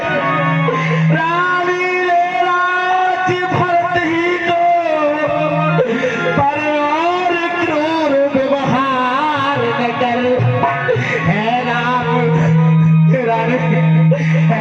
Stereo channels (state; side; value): identical; both; correlation 1.00